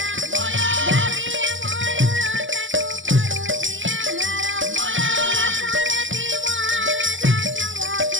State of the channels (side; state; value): left; late; 0.56 ms